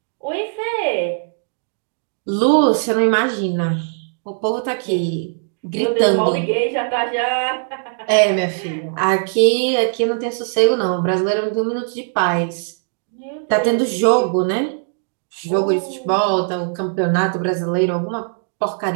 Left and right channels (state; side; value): silent; left; digital silence